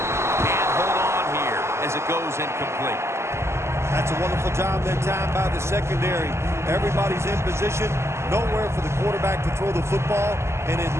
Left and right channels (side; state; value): left; late; 0.13 ms